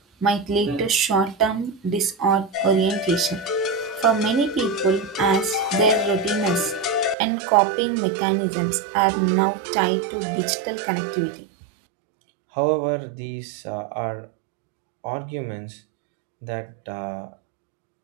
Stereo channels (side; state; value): left; drops out; at 7.2 s